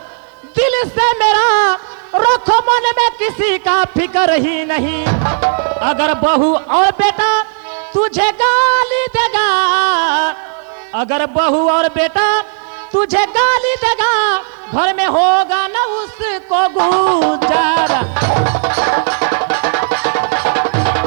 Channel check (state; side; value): silent; left; digital silence